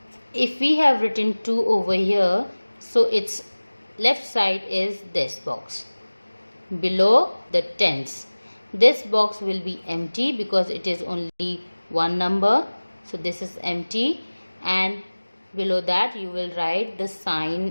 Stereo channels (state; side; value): inverted; both; correlation -1.00